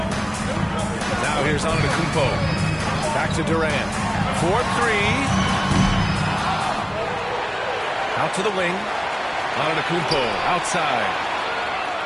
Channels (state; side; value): identical; both; correlation 1.00